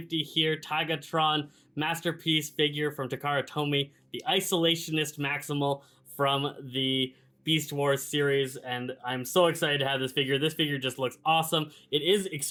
here, Tigatron masterpiece figure from Takara Tomy, the isolationist Maximal from the Beast Wars series, and I'm so excited to have this figure. This figure just looks awesome. It is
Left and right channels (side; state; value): both; identical; correlation 1.00